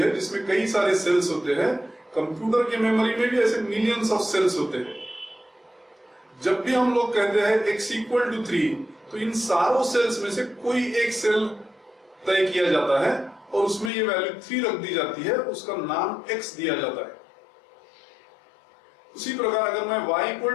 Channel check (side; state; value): right; drops out; at 13.9 s